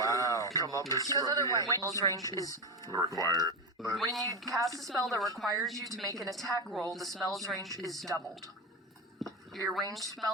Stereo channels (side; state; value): both; normal; correlation 0.16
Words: come up as Because otherwise, Wayne's range is required. when you cast a spell that requires you to make an attack roll, the spell's range is doubled. Your ranged